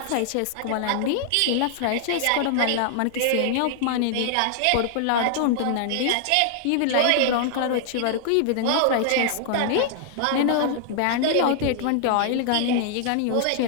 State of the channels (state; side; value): different; both; correlation -0.01